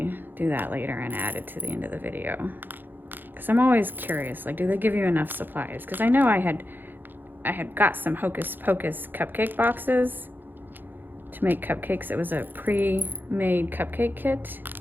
do that later and add it to the end of the video. Because I'm always curious, like, do they give you enough supplies? Because I know I had got some Hocus Pocus cupcake boxes to make cupcakes. It was a pre-made cupcake kit,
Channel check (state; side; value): late; left; 0.092 ms